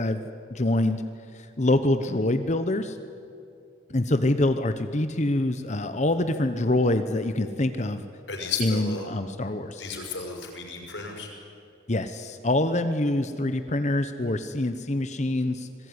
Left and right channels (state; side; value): normal; both; correlation 0.65